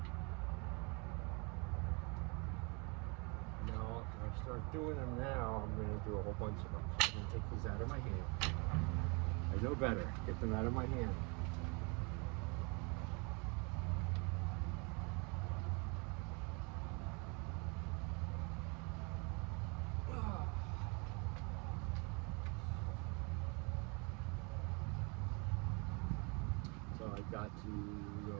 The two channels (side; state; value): left; quieter; 31.5 dB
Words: Now, if I start doing them now, I'm going to do a whole bunch of them. So I'm going to take these out of my hand. I know better. Get them out of my hand. So I got to go